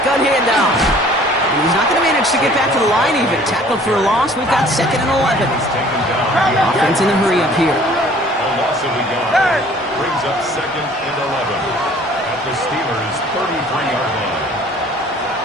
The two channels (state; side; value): normal; both; correlation 0.53